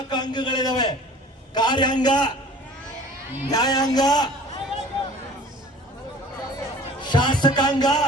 ಅಂಗಗಳಿದಾವೆ: ಕಾರ್ಯಾಂಗ, ನ್ಯಾಯಾಂಗ, ಶಾಸಕಾಂಗ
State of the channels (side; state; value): both; normal; correlation 0.46